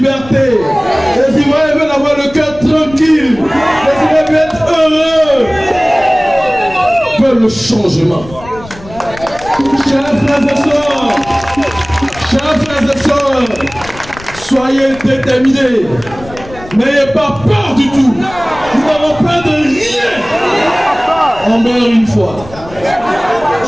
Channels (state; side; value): noise; left; rumble, 18 dB below the sound